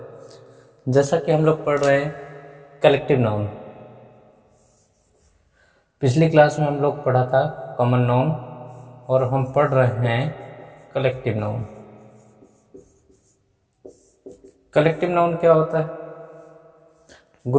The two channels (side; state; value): both; identical; correlation 1.00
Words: जैसा कि हम लोग पढ़ रहे हैं कलेक्टिव नाउन। पिछली क्लास में हम लोग पढ़ा था कॉमन नाउन और हम पढ़ रहे हैं कलेक्टिव नाउन। कलेक्टिव नाउन क्या होता है?